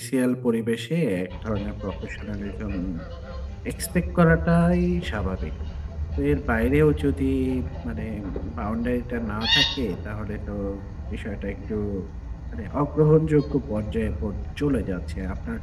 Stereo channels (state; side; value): identical; both; correlation 1.00